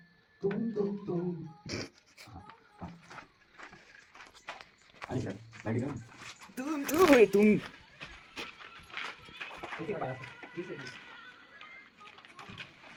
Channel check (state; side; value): identical; both; correlation 1.00